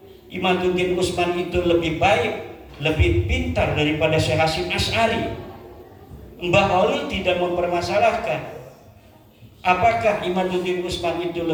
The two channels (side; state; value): both; identical; correlation 1.00